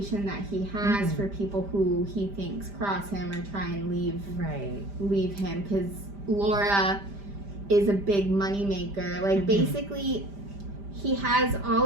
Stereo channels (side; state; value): left; late; 5.0 ms